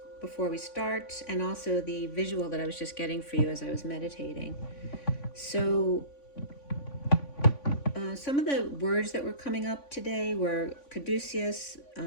before we start, and also the visual that I was just getting for you as I was meditating. So some of the words that were coming up today were caduceus,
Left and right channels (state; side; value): late; right; 3.5 ms